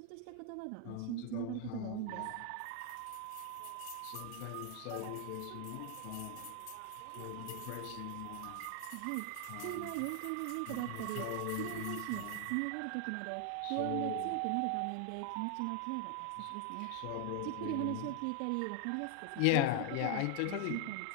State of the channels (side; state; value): both; different; correlation 0.00